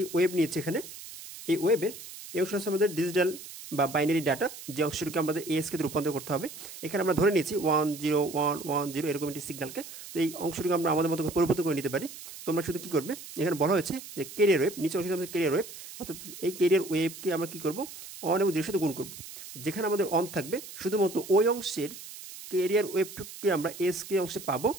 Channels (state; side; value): noise; right; hiss, 14 dB below the sound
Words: ওয়েব নিয়েছি, এখানে এই ওয়েবের এই অংশ হচ্ছে আমাদের ডিজিটাল বা বাইনারি ডাটা, যে অংশটিকে আমাদের ASKতে রূপান্তর করতে হবে। এখানে আমরা ধরে নিয়েছি 10110 এরকম একটি সিগন্যালকে। তো এই অংশটিকে আমরা আমাদের মতো পরিবর্তন করে নিতে পারি। তোমরা শুধু কী করবে, এখানে বলা হয়েছে যে ক্যারিয়ার ওয়েব, নিচে অংশটি আমাদের ক্যারিয়ার ওয়েব, অর্থাৎ এই ক্যারিয়ার ওয়েবকে আমরা কী করবো, অন এবং 0 সাথে গুণ করবো। যেখানে আমাদের অন থাকবে শুধুমাত্র ওই অংশের ক্যারিয়ার ওয়েবটুকুকে আমরা ASK অংশে পাবো,